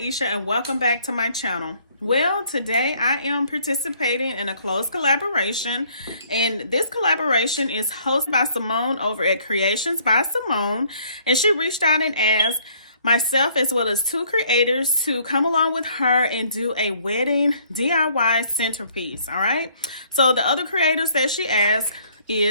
and welcome back to my channel. Well, today I am participating in a close collaboration, and this collaboration is hosted by Simone over at Creations by Simone, and she reached out and asked myself as well as 2 creators to come along with her and do a wedding DIY centerpiece. All right, so the other creators that she asked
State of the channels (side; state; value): both; inverted; correlation -0.62